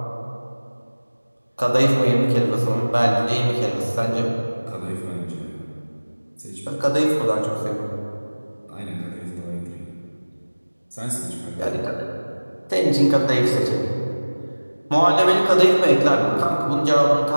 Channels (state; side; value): inverted; both; correlation -1.00